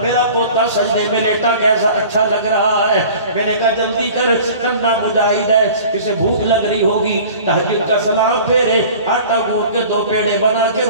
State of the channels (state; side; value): inverted; both; correlation -0.44